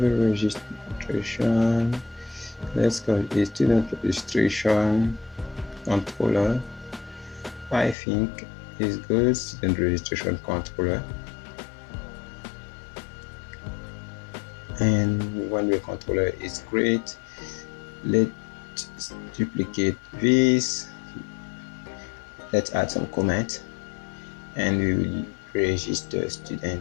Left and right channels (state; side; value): drops out; right; at 8.0 s